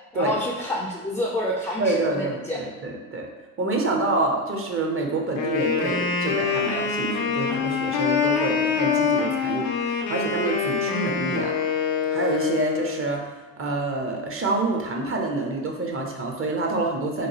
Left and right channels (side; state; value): both; normal; correlation 0.11